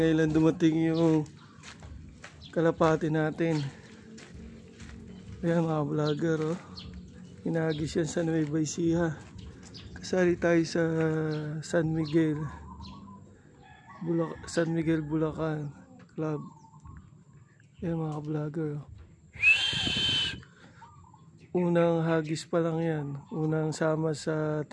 lang dumating yung kalapati natin. Ayan mga vlogger, oh. Hinagis yan sa Nueva Ecija. Kasali tayo sa San Miguel Bulacan Club. Ayan mga vlogger, oh. Unang hagis pa lang yan. Unang sama sa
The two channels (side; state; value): both; identical; correlation 1.00